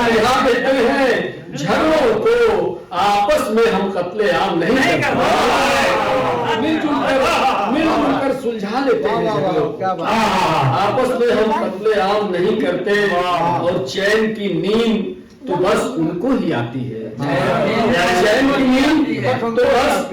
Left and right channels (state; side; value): identical; both; correlation 1.00